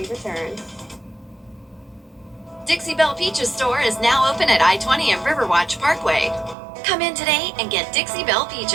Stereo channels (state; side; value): drops out; left; at 6.6 s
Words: return. Dixie Belle Peaches store is now open at I-20 and Riverwatch Parkway. Come in today and get Dixie Belle